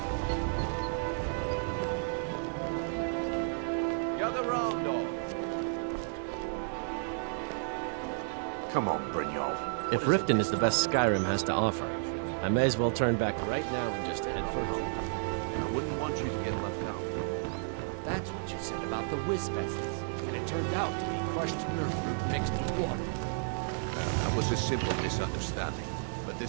Gather round all. Come on, Brynjolf. If Riften is the best Skyrim has to offer, I may as well turn back right now and just head for home. I wouldn't want you to get left out. That's what you said about the wisp essence, and it turned out to be crushed nerve root mixed with water. Well, that was a simple misunderstanding. But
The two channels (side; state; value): left; silent; digital silence